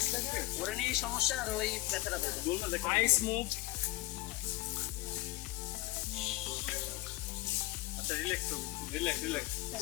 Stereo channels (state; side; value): quieter; right; 18.7 dB